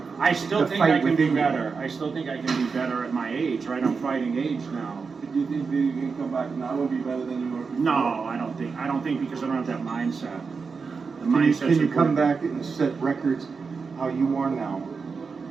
I still the think fight I can be within you. better. I still think I can be better at my age, right? I'm fighting age now. Do you think that you can come back now and be better than you were before? No, I don't think because I don't have that mindset. The Can you, mindset's can you come important. back and set records how you are now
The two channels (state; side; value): quieter; left; 5.0 dB